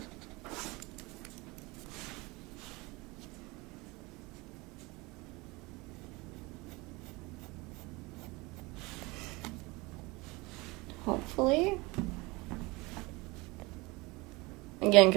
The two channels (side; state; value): left; quieter; 24.0 dB